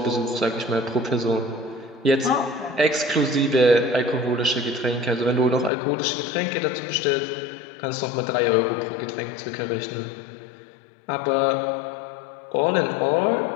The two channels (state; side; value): drops out; right; at 5.7 s